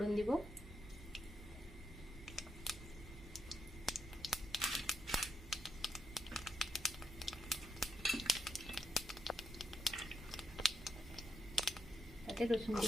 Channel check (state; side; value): noise; right; hum, 15 dB below the sound